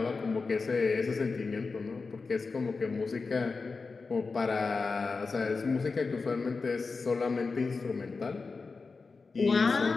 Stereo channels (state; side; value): quieter; right; 4.3 dB